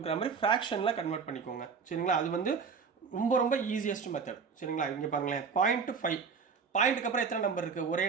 மாதிரி ஃப்ராக்ஷனில் கன்வெர்ட் பண்ணிக்கோங்க சரிங்களா. அது வந்து ரொம்ப ரொம்ப ஈஸியஸ்ட் மெத்தட் சரிங்களா. இங்கே பாருங்களேன் 0.5 பாயிண்ட்டுக்கு அப்புறம் எத்தனை நம்பர் இருக்குது, ஒரே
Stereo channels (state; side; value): quieter; left; 5.7 dB